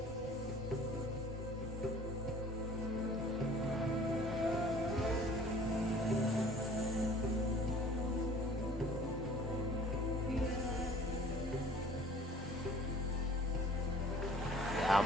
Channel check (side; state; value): both; normal; correlation 0.51